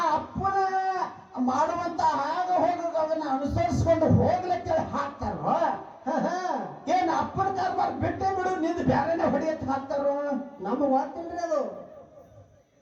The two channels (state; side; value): identical; both; correlation 1.00